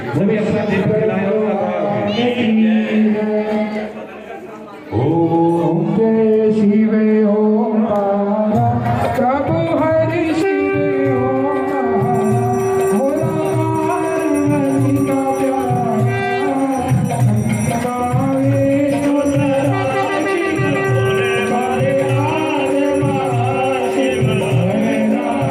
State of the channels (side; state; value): both; identical; correlation 1.00